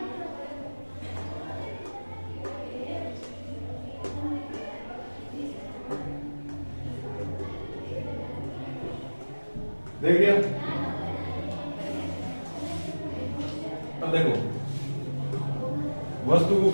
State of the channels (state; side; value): inverted; both; correlation -1.00